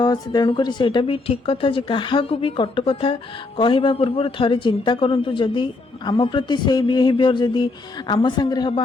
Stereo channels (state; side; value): quieter; right; 3.4 dB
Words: तेणु करी सेटा भी ठीक कथा जे काहा को भी कट कथा कहबा पूर्व थरे चिंता करंतु जदि आम प्रति से बिहेवियर जदि आम संगे हम